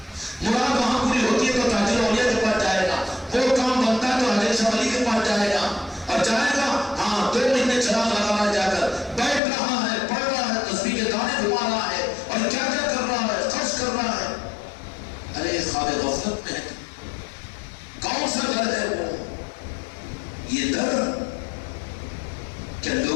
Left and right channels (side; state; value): right; drops out; at 9.4 s